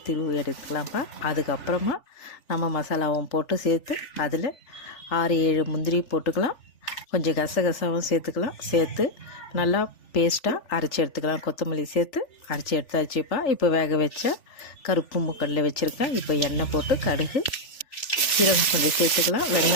திருவி எடுத்துக்கலாம்ப்பா. அதுக்கப்புறமா நம்ம மசாலாவும் போட்டு சேர்த்து அதில் 6-7 முந்திரி போட்டுக்கலாம். கொஞ்சம் கசகசாவும் சேர்த்துக்கலாம். சேர்த்து நல்லா பேஸ்ட்டாக அரைச்சி எடுத்துக்கலாம். கொத்தமல்லி சேர்த்து அரைச்சி எடுத்தாச்சுப்பா. இப்போ வேக வச்ச கருப்பு மூக்கடலை வச்சுருக்கேன். இப்போ எண்ணெய் போட்டு கடுகு, சீரகம் கொஞ்சம் சேர்த்துக்கலாம்.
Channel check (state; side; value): late; right; 3.4 ms